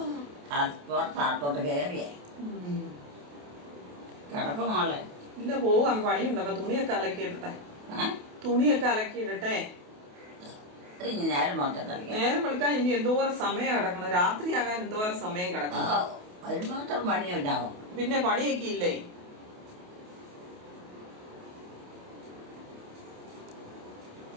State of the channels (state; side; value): late; left; 28 ms